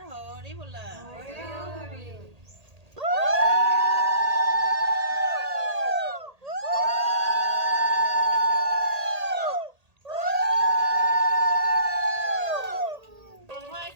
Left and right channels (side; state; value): left; late; 1.8 ms